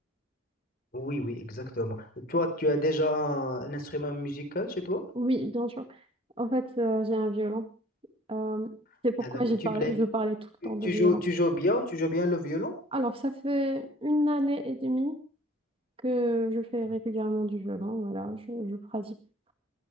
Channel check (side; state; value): both; normal; correlation 0.51